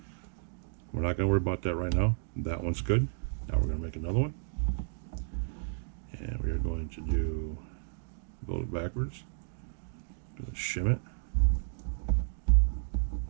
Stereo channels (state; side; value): silent; left; digital silence